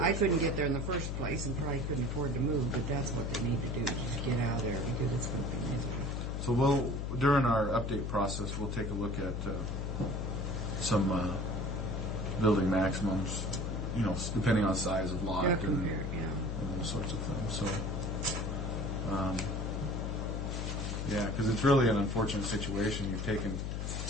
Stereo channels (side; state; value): left; noise; hum, 2 dB below the sound